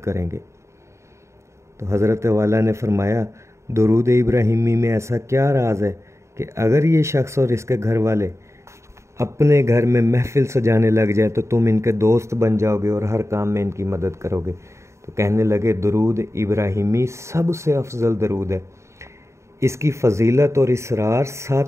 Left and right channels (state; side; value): late; left; 0.14 ms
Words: तो हज़रत वाला ने फरमाया, दरूद इब्राहिमी में ऐसा क्या राज है कि अगर ये शख्स और इसके घर वाले अपने घर में महफ़िल सजाने लग जाए तो तुम इनके दोस्त बन जाओगे और हर काम में इनकी मदद करोगे? तो कहने लगे, दरूद इब्राहिमी सबसे अफजल दरूद है, इसकी फ़जीलत और इसरार